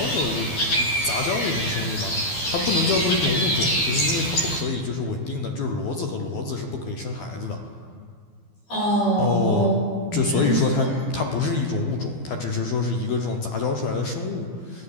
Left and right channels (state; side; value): late; right; 12 ms